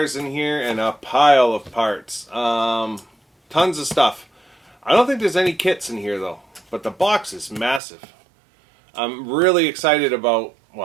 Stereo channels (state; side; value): drops out; left; at 7.8 s